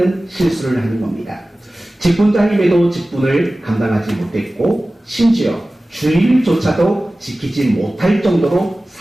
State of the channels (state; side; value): normal; both; correlation 0.97